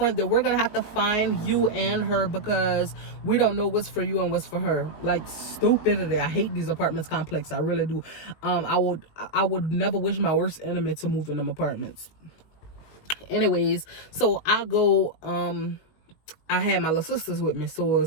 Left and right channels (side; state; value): right; late; 19 ms